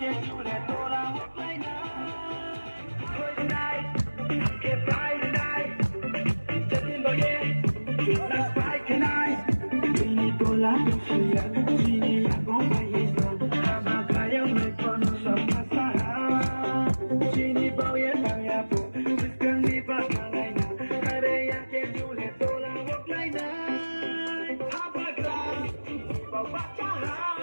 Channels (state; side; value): inverted; both; correlation -1.00